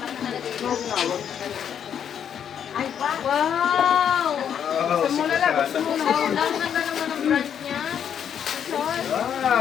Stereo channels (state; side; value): quieter; right; 8.6 dB